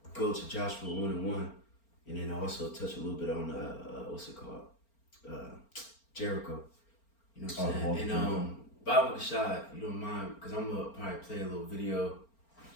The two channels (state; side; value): late; right; 4.4 ms